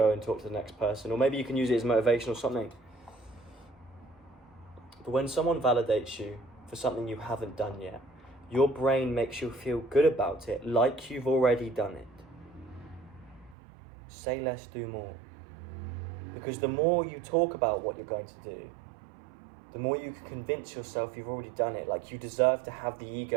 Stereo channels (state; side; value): drops out; left; at 13.6 s